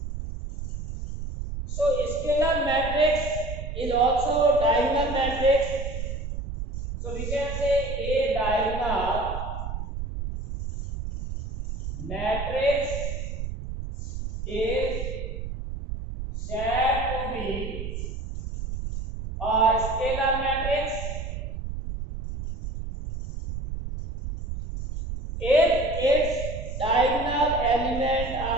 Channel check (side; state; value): right; noise; rumble, 6 dB below the sound